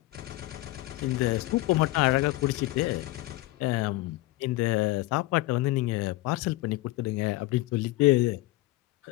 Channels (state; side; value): quieter; right; 18.9 dB